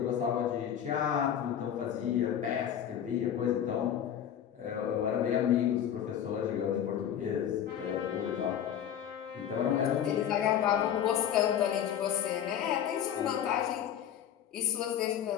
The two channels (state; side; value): quieter; right; 9.6 dB